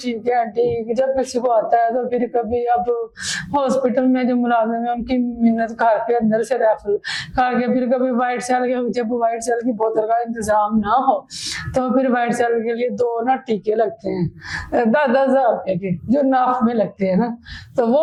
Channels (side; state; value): both; identical; correlation 1.00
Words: है आंटी। जब किसी को आता है तो फिर कभी अब हॉस्पिटल में जो मुलाजिम है उनकी मिन्नत करके अंदर से रेफर करके, फिर कभी व्हाइट सेल के, जब व्हाइट सेल की बोतल का इंतजाम ना हो तो फिर व्हाइट सेल के लिए 2 ना टीके लगते हैं 10,000 रुपए के, जो नाफ में लगते हैं ना, तो वो